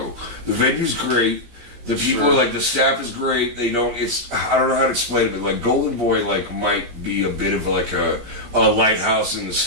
The venue's great. The people are the staff is great. They don't. I don't know how to explain it, but Golden Boy might be a bit of a lighthouse in the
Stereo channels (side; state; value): left; late; 17 ms